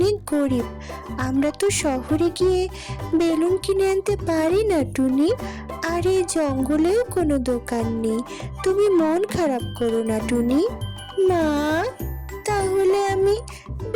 গরিব, আমরা তো শহরে গিয়ে বেলুন কিনে আনতে পারি না টুনি। আর এই জঙ্গলেও কোনো দোকান নেই, তুমি মন খারাপ করো না টুনি। মা, তাহলে আমি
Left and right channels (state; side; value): identical; both; correlation 1.00